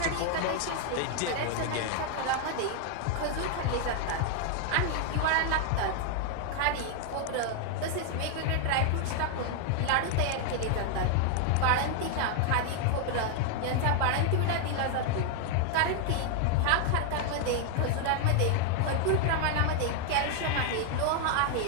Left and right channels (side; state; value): both; different; correlation 0.00